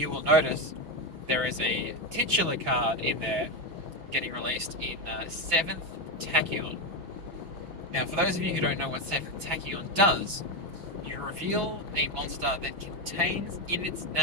will notice there is a titular card in there getting released in 7th Tachyon. Now, for those of you who don't know what 7th Tachyon does, you reveal a monster that contains in its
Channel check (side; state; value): left; late; 6.1 ms